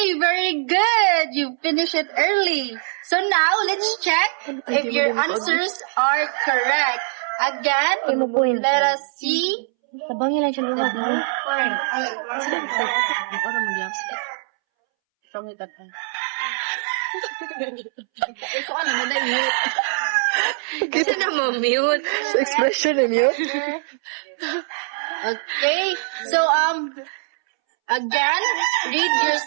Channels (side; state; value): left; silent; 64 dB below the other